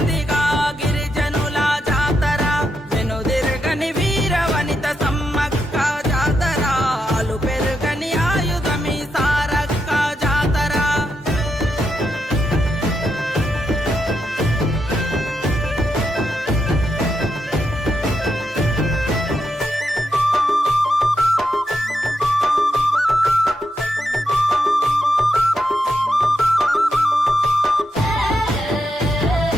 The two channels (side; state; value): both; normal; correlation 0.83